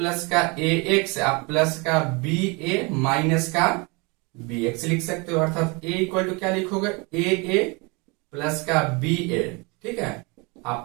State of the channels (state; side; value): quieter; left; 29.0 dB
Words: का ax आप प्लस का ba माइनस का bx लिख सकते हो। अर्थात a इक्वल टू क्या लिखोगे a प्लस का ba, ठीक है। आप